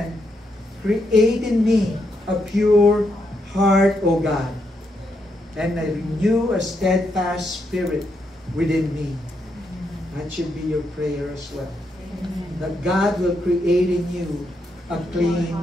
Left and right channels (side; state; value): both; normal; correlation 0.80